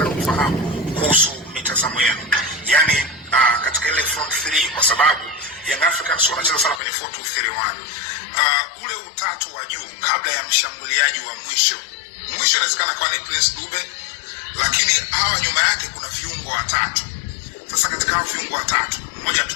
kufahamu kuhusu mitazamo yenu, yani katika ile front 3, kwa sababu Young Africans wanacheza sana kwenye 4-2-3-1. Ule utatu wa juu kabla ya mshambuliaji wa mwisho inawezekana kuwa ni Prince Dube, lakini hawa nyuma yake kuna viungo watatu. Sasa katika hao viungo watatu, mmoja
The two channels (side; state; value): right; drops out; at 6.8 s